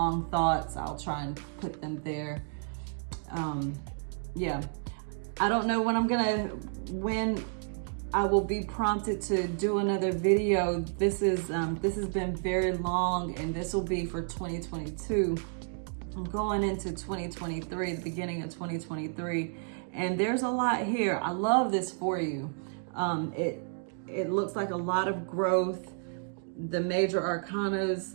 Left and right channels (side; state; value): left; silent; 57 dB below the other